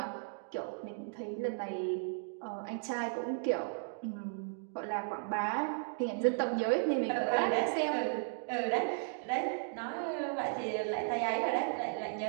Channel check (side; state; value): left; silent; digital silence